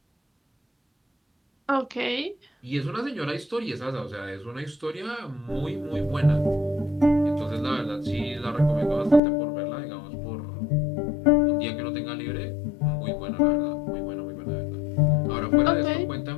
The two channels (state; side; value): drops out; right; at 9.2 s